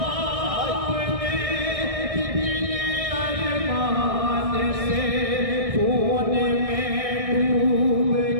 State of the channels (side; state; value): left; late; 1.6 ms